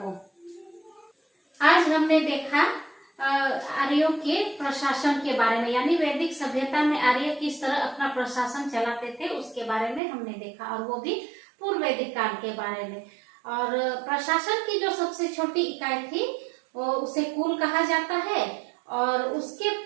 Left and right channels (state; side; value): drops out; left; at 10.0 s